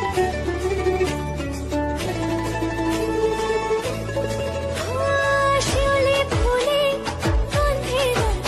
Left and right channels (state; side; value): identical; both; correlation 1.00